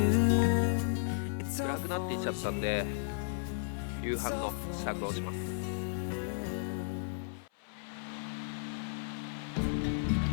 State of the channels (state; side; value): silent; right; 55 dB below the other